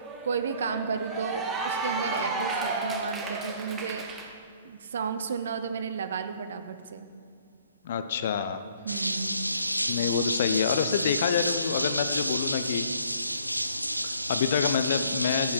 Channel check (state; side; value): inverted; both; correlation -0.61